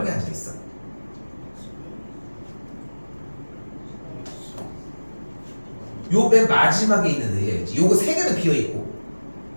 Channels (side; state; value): both; inverted; correlation -1.00